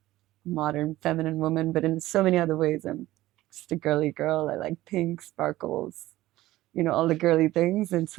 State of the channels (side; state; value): left; quieter; 16.3 dB